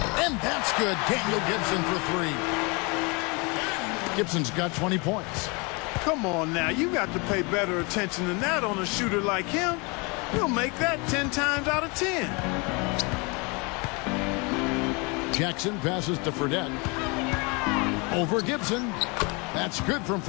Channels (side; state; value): right; quieter; 29.6 dB